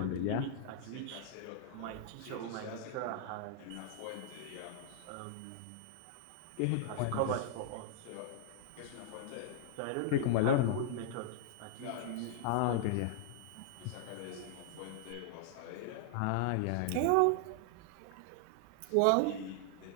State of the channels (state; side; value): different; both; correlation -0.01